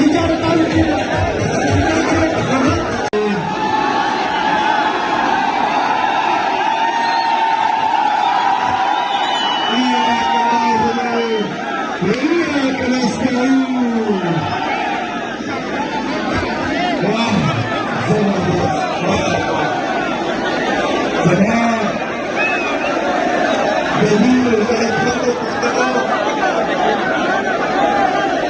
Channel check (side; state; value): both; identical; correlation 1.00